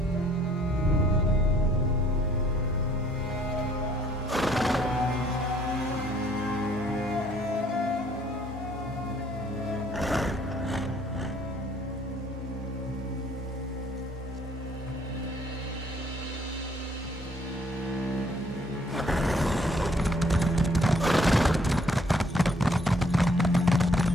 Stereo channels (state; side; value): normal; both; correlation 0.62